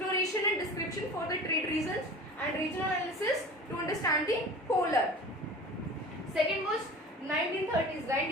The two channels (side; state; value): both; normal; correlation 0.38